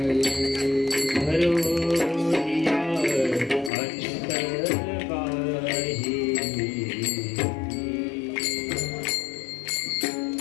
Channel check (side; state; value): right; drops out; at 3.7 s